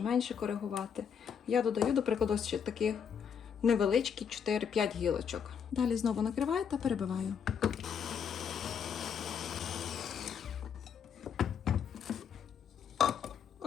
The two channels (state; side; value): quieter; right; 7.4 dB